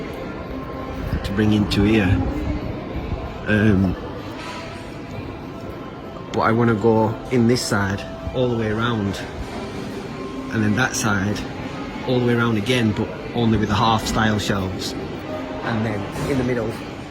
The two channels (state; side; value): identical; both; correlation 1.00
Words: to bring into here, but I want to go in this side all the way around, and then that side all the way around again, but only with the half style shelves, and then in the middle